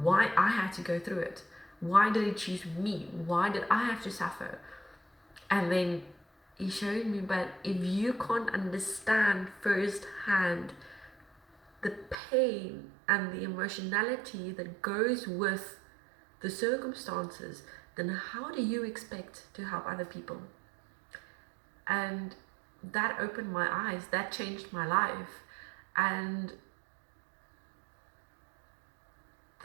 I had to go through it. Why did he choose me? Why did I have to suffer? And then he showed me, but if you can't understand firsthand the pain and the emotionality that goes with the circumstances, then how do you expect to help other people? And that opened my eyes, that changed my life. And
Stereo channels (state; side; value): drops out; left; at 12.2 s